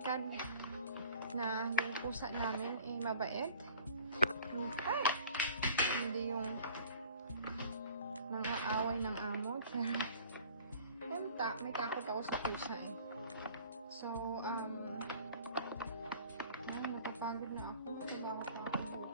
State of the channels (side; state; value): both; inverted; correlation -0.50